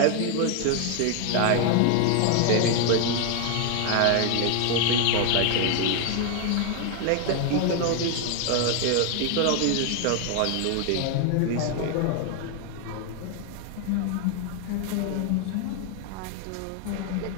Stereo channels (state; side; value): different; both; correlation 0.00